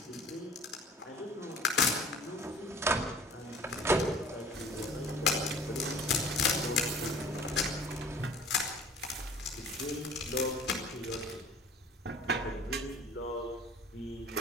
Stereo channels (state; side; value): normal; both; correlation 0.47